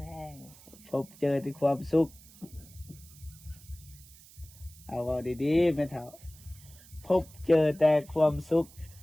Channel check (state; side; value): noise; right; hiss, 22 dB below the sound